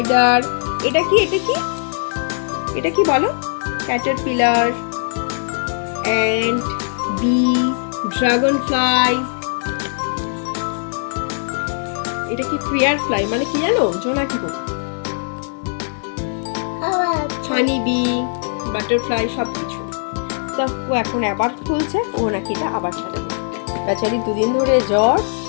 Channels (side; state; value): right; silent; 63 dB below the other